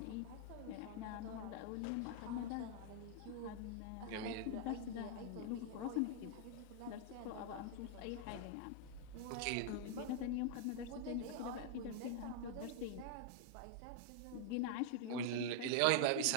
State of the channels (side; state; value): both; different; correlation 0.00